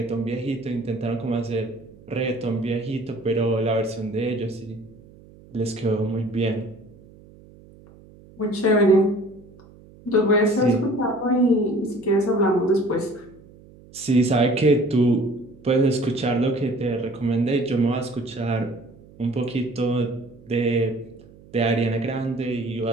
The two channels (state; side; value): noise; right; hum, 23 dB below the sound